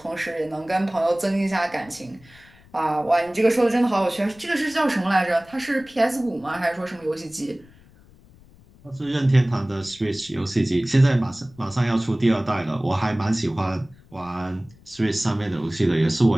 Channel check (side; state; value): left; noise; rumble, 26 dB below the sound